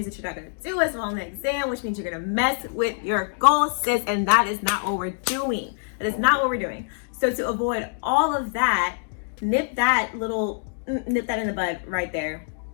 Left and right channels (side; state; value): right; silent; digital silence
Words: that you're not going to do as well on the exam, which means you're going to mess with your goals, sis. And that is not what we're doing. That is not what we're doing. So to avoid all of that, nip that in the bud right there.